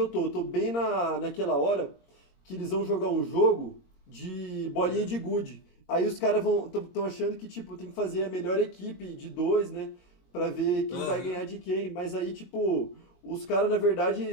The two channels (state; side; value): late; right; 22 ms